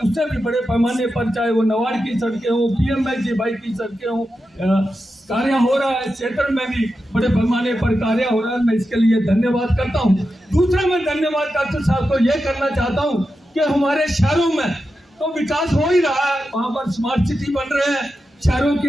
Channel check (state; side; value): normal; both; correlation 0.90